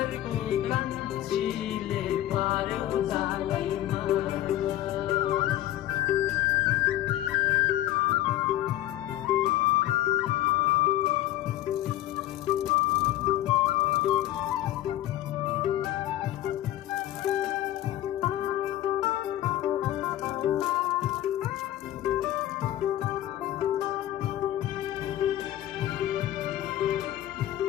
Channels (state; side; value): quieter; right; 13.7 dB